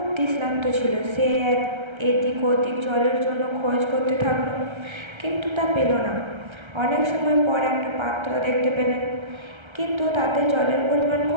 তৃষ্ণার্ত ছিল। সে এদিক ওদিক জলের জন্য খোঁজ করতে থাকলো, কিন্তু তা পেল না। অনেক সময় পর একটা পাত্র দেখতে পেলেন, কিন্তু তাতে জলের পরিমাণ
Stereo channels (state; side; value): late; left; 1.3 ms